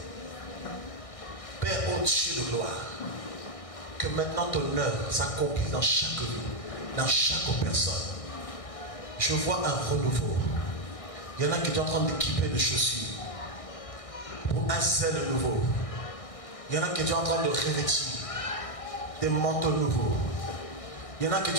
Père au-dessus de gloire, que maintenant ton œuvre s'accomplisse dans chaque vie, dans chaque personne. Je vois un renouveau. Il y en a qui sont en train d'équiper de chaussures pour un zèle nouveau. Il y en a qui sont en train de revêtir des manteaux nouveaux. Il y en a qui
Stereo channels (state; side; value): late; right; 1.6 ms